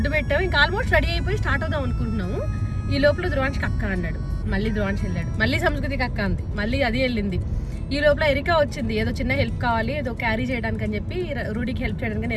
పెట్టాము, ఇంకా ఆల్మోస్ట్ రెడీ అయిపోయి స్టార్ట్ అవుదాం అనుకుంటున్నాము. ఈ లోపల ధ్రువాంష్కి అక్క అన్నాడు, మళ్ళీ ధ్రువాంశ్ వెళ్ళాడు, మళ్ళీ సంస్కృతికి అక్క అంది, మళ్ళీ అది వెళ్ళింది. ఈ లోపల ఎరికా వచ్చింది, ఏదో చిన్న హెల్ప్ కావాలి, ఏదో క్యారీ చేయడానికి అని చెప్పి రూడీకి హెల్ప్ చేయడానికి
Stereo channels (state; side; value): identical; both; correlation 1.00